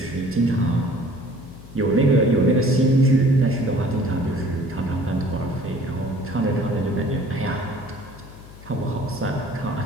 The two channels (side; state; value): left; noise; hum, 18 dB below the sound